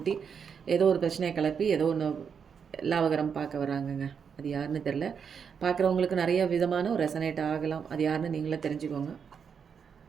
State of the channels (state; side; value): quieter; left; 6.8 dB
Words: ஏதோ ஒரு பிரச்சனையை கிளப்பி ஏதோ ஒன்று லாபகரம் பார்க்க வராங்கங்க. அது யாருன்னு தெரில. பார்க்குறவங்களுக்கு நிறைய விதமான ஒரு ரெசனேட் ஆகலாம். அது யாருன்னு நீங்களே தெரிஞ்சுக்கோங்க.